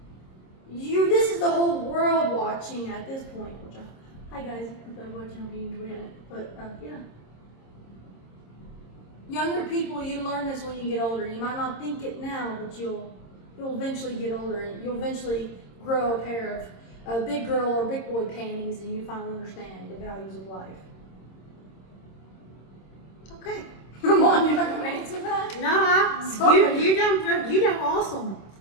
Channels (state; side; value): late; right; 26 ms